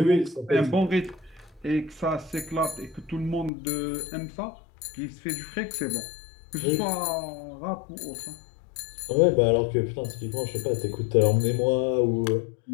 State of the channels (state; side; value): drops out; right; at 3.5 s